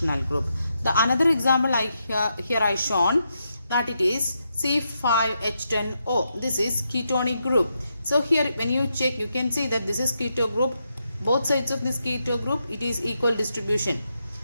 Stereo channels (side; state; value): both; inverted; correlation -0.82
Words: group. The another example here I shown that it is C5H10O. This is ketonic group. So here when you check you can see that this is keto group. Both sides of this keto group it is equal distribution.